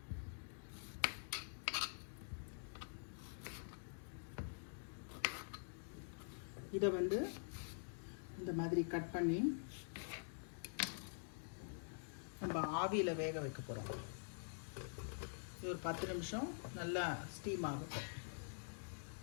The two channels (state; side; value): silent; right; digital silence